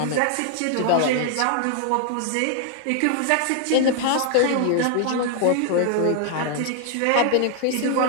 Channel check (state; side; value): different; both; correlation 0.00